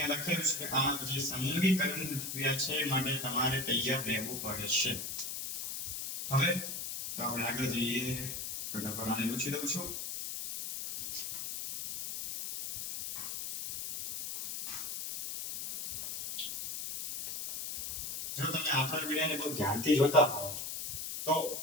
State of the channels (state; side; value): noise; left; hiss, 5 dB below the sound